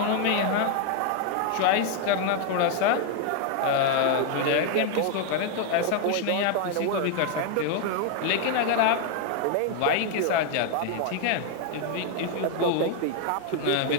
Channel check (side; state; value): both; different; correlation 0.00